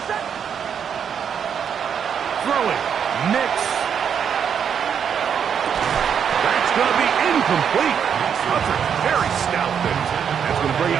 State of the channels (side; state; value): left; quieter; 7.7 dB